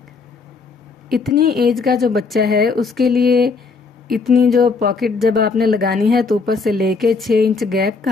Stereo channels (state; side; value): quieter; right; 4.5 dB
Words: इतनी एज का जो बच्चा है उसके लिए इतनी जो पॉकेट जब आपने लगानी है तो ऊपर से लेके 6 इंच गैप